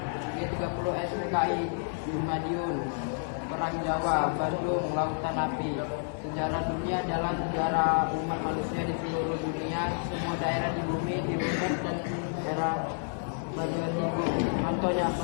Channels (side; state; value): right; silent; 58 dB below the other